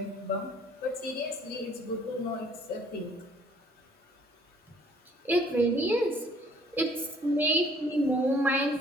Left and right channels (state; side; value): normal; both; correlation 0.59